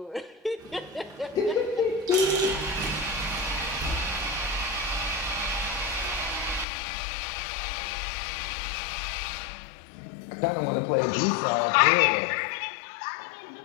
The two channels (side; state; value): right; drops out; at 6.7 s